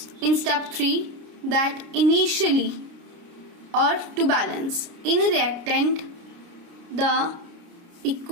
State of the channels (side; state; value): left; late; 29 ms